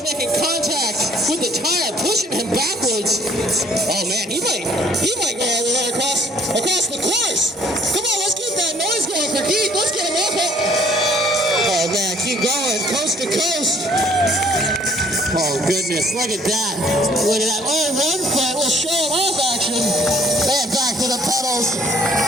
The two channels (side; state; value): both; normal; correlation 0.59